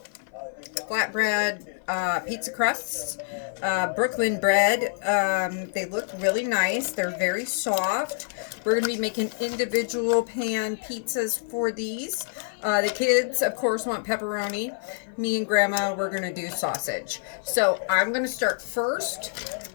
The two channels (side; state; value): right; silent; 55 dB below the other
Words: flatbread pizza crusts, Brooklyn bread. They look really nice. They're very soft. We're going to be making individual pan pizzas for these. The kids, of course, want pepperoni. Me and Grandma, we're going to do sausage. So I'm going to start first